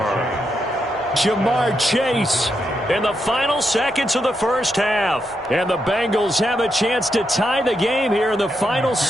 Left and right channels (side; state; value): both; normal; correlation 0.82